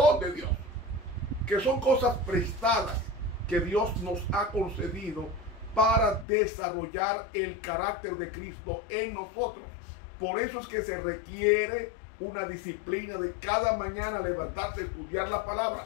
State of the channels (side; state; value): right; drops out; at 6.2 s